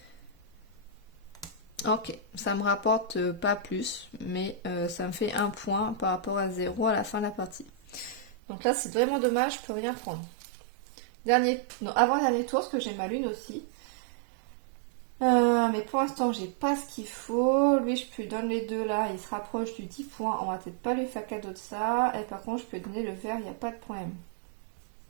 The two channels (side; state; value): left; drops out; at 8.3 s